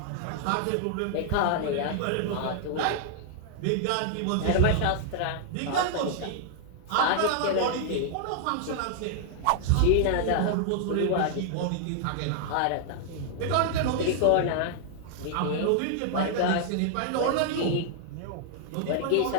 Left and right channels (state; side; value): different; both; correlation -0.01